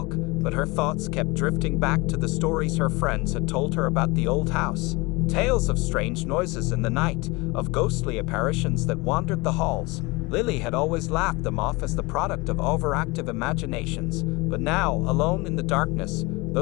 but her thoughts kept drifting back to the stories her friends had told her about the old house. Tales of strange noises in the night, of ghostly apparitions that wandered the halls. Lily had always laughed them off as the product of overactive imaginations, but now, alone in the darkness,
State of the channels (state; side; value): quieter; right; 24.7 dB